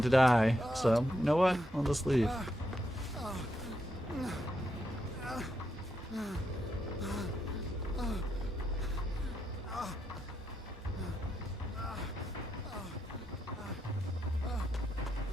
to die. So, you know what? I'll just leave.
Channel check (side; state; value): both; normal; correlation 0.82